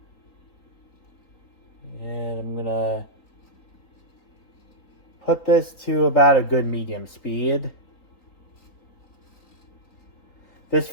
And I'm gonna put this to about a good medium speed. This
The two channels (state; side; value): late; right; 3.9 ms